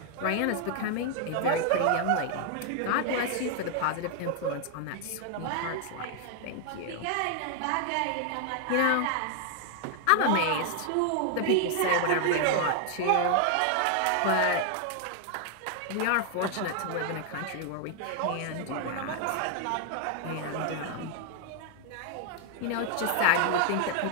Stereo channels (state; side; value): different; both; correlation 0.00